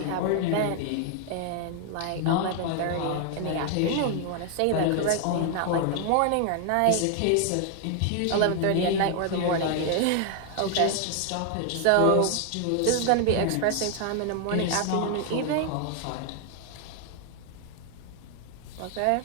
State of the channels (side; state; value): both; different; correlation 0.00